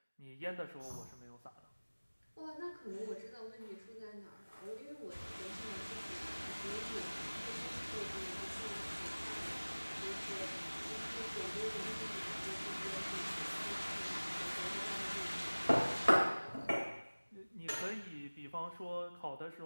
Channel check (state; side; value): inverted; both; correlation -1.00